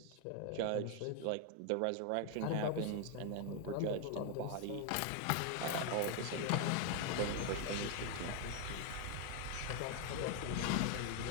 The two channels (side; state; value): both; different; correlation 0.00